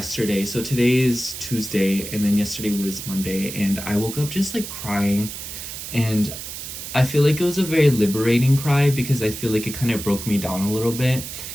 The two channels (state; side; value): noise; right; hiss, 9 dB below the sound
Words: So today is Tuesday, and then yesterday was Monday, and I woke up just like crying. And I feel like it was a very liberating cry because I feel like it kind of broke me down a little bit.